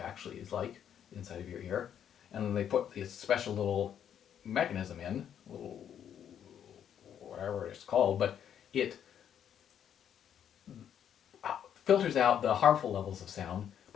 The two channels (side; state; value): right; quieter; 9.2 dB